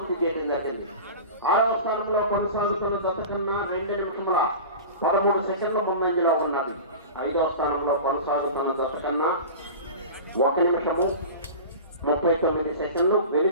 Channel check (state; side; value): inverted; both; correlation -0.33